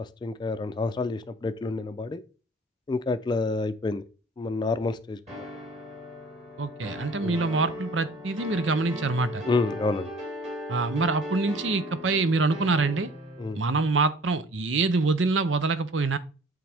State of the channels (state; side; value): normal; both; correlation 0.50